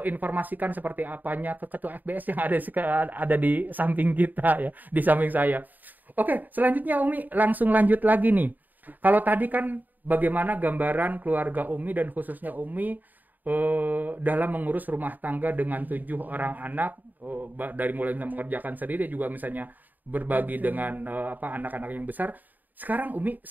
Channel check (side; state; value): left; late; 0.085 ms